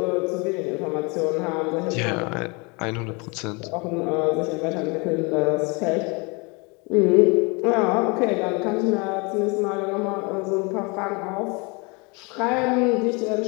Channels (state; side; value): quieter; right; 29.5 dB